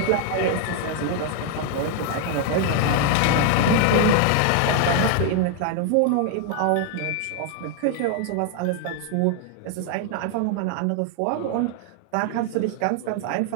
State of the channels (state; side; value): different; both; correlation 0.00